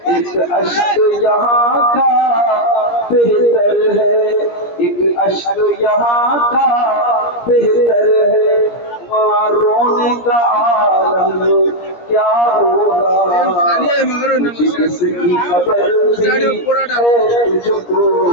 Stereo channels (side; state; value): right; late; 17 ms